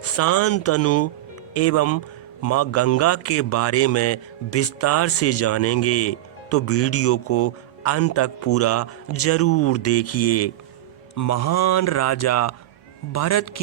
शांतनु एवं माँ गंगा के बारे में विस्तार से जानेंगे, तो वीडियो को अंत तक पूरा जरूर देखिए। महान राजा भरत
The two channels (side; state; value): left; quieter; 14.7 dB